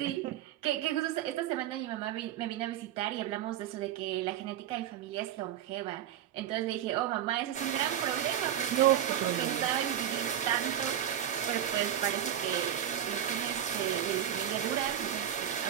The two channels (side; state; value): left; quieter; 10.5 dB